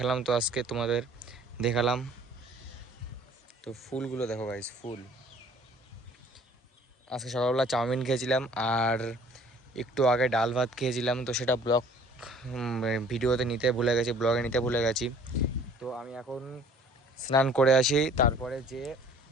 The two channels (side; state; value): both; normal; correlation 0.53